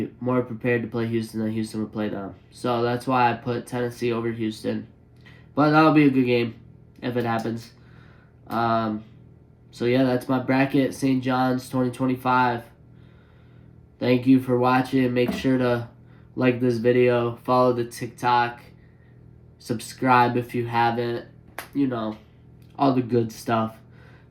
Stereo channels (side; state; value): both; identical; correlation 1.00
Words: more prepared to play Houston than Houston would play them. So that's why I put Tennessee over Houston. But that'll be a good game if it happens. So yeah, that's my bracket, St. John's 2025. Thank you for watching. Make sure to like this video, follow the TikTok, subscribe if you haven't, you know, all the good stuff.